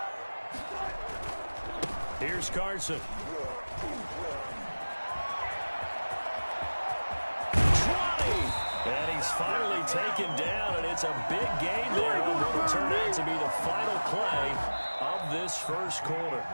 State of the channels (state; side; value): inverted; both; correlation -1.00